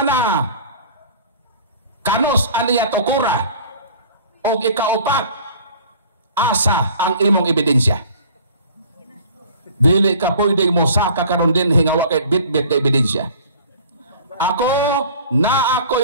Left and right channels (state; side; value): inverted; both; correlation -0.46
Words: kanos aniya tukura? O ikaupat, asa ang imong ebidensya? Dili ka pwedeng mo saka karon din hingawa kay bit-bit na ebidensya. Ako na